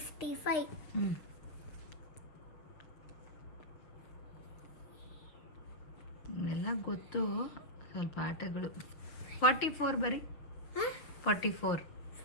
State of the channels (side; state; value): right; late; 6.5 ms